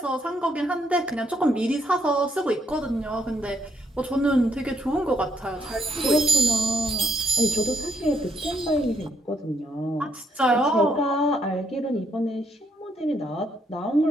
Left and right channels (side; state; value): both; normal; correlation 0.74